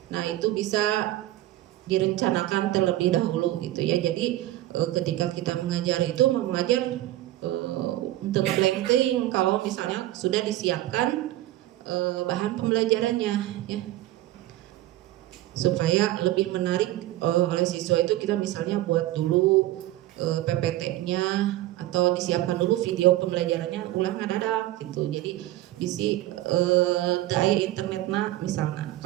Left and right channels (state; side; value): quieter; left; 15.6 dB